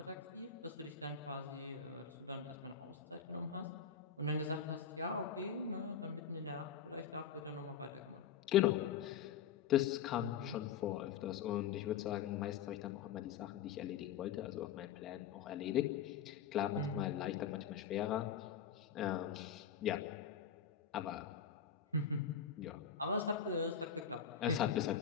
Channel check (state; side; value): quieter; right; 7.6 dB